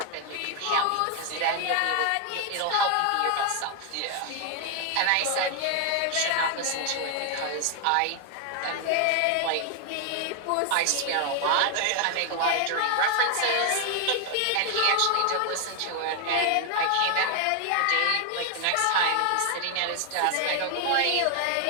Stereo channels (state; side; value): different; both; correlation 0.00